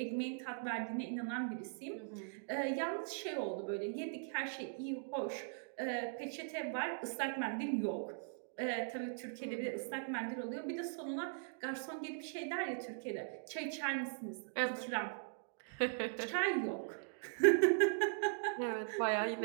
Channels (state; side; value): silent; left; digital silence